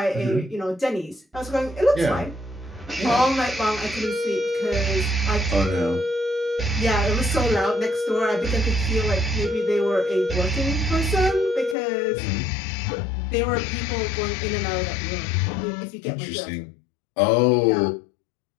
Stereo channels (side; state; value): right; drops out; at 11.8 s